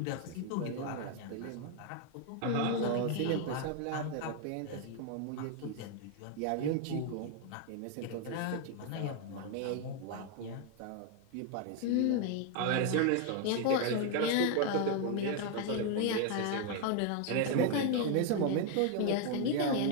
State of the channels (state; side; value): different; both; correlation 0.01